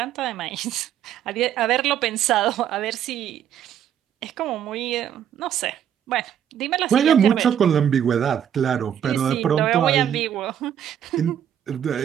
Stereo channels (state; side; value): quieter; left; 9.5 dB